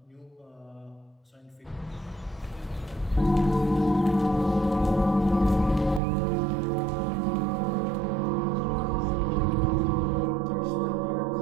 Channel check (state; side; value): drops out; left; at 6.0 s